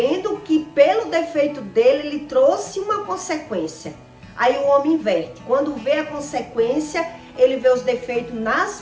que pelo defeito dele, ele trouxe uma consequência. Aí o homem inverte. Quando vê a consequência, ele vê os defeitos nas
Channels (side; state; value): both; identical; correlation 1.00